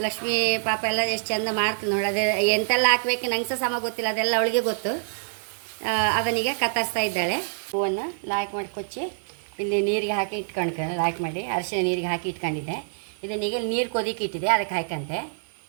ಲಕ್ಷ್ಮೀ ಪಾಪ ಎಲ್ಲ ಎಷ್ಟು ಚಂದ ಮಾಡ್ತೀನಿ ನೋಡಿ. ಅದೇ ಎಂತೆಲ್ಲ ಹಾಕ್ಬೇಕು ನಂಗೆ ಸಹ ಸಮ ಗೊತ್ತಿಲ್ಲ, ಅದೆಲ್ಲ ಅವಳಿಗೆ ಗೊತ್ತು. ಅದನ್ನೀಗ ಕತ್ತರಿಸ್ತಾ ಇದ್ದಾಳೆ. ಹೂವನ್ನು ಲಾಯ್ಕ್ ಮಾಡಿ ಕೊಚ್ಚಿ ಇಲ್ಲಿ ನೀರಿಗೆ ಹಾಕಿ ಇಟ್ಕೊಂಡು ಲಾಯ್ಕ್ ಮಾಡಿ ಅರಿಶಿನ ನೀರಿಗೆ ಹಾಕಿ ಇಟ್ಕೊಂಡಿದ್ದೆ. ಇದನ್ನೀಗ ನೀರು ಕೊದಿಕ್ಕೆ ಇಟ್ಟಿದೆ, ಅದಕ್ಕೆ ಹಾಕಂತೆ.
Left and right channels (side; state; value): left; silent; 58 dB below the other